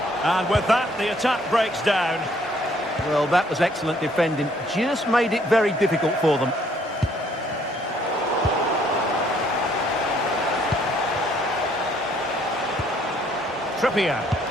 And with that, the attack breaks down. Well, that was excellent defending. Just made it very difficult for them. Trippier.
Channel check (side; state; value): both; normal; correlation 0.64